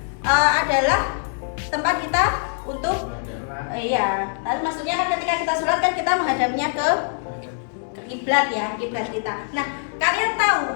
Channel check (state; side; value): silent; right; digital silence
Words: adalah tempat kita untuk iya. Lalu maksudnya kan ketika kita sholat kan kita menghadapnya ke kiblat ya, kiblat kita. Nah, kalian